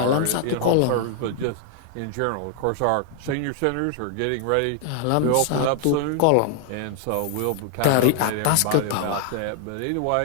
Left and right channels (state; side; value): different; both; correlation 0.00